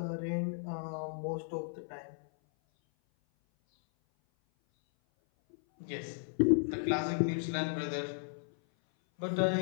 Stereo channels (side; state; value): right; silent; 55 dB below the other